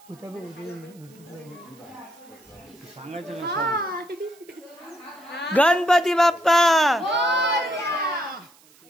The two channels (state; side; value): noise; right; hiss, 28 dB below the sound